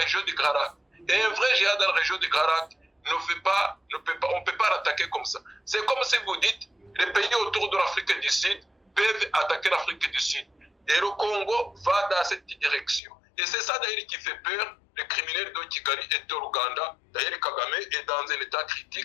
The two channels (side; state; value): right; drops out; at 13.0 s